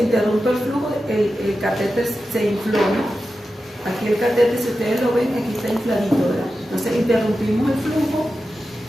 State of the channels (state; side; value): normal; both; correlation 0.92